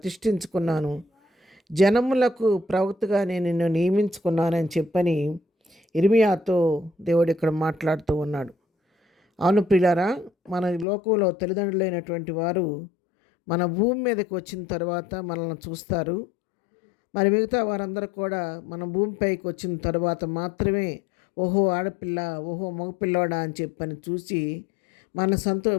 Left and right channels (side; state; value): right; drops out; at 10.9 s